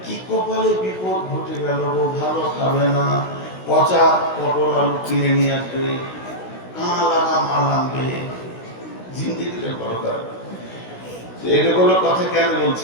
কি কপালে বিপদ ঘটে গেল গো, ভালো খাবে না, পচা পটল আলু কিনে নিয়ে আসবে, কানা লাগা মাল আনবে, জিন্দিগিতে বড়কার। এগুলো কথা কেন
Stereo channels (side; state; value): right; late; 16 ms